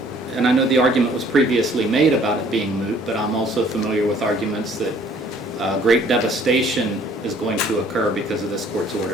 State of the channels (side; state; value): both; normal; correlation 0.58